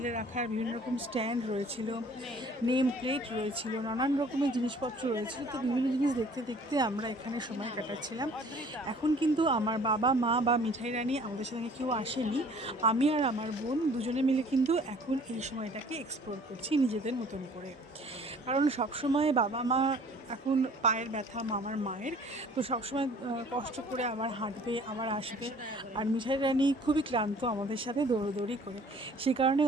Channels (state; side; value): normal; both; correlation 0.53